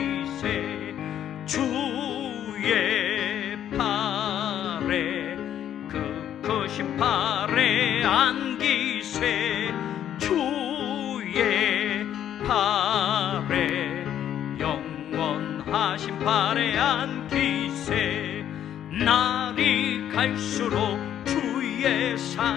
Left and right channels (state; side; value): quieter; right; 10.5 dB